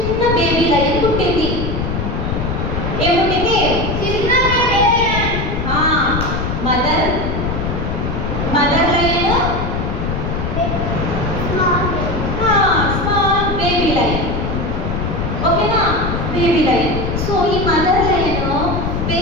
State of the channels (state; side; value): noise; left; rumble, 2 dB below the sound